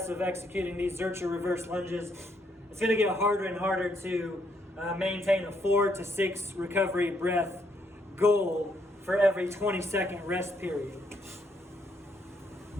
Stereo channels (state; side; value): normal; both; correlation 0.74